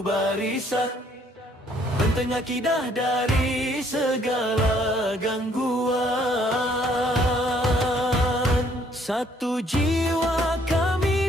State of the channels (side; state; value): both; normal; correlation 0.64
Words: barisan, benteng akidah dari segala gangguan. Satu jiwa